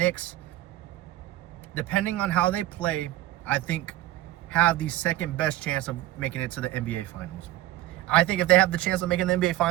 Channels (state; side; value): quieter; left; 15.5 dB